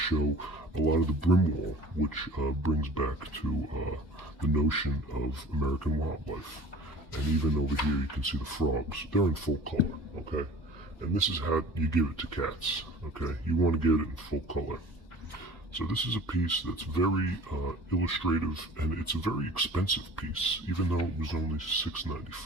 a lot of the brim wall, which brings back to the notion of American wildlife. And even over here you can see the frogs. They're in full color, okay? And this is how you give it to cats, okay? You want to get it in full color. So this is a piece that's very illustrative, and it's a very expensive piece, even though it was only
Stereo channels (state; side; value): normal; both; correlation 0.44